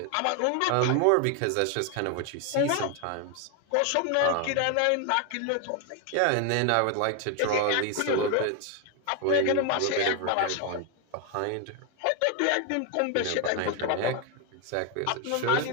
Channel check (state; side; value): different; both; correlation 0.01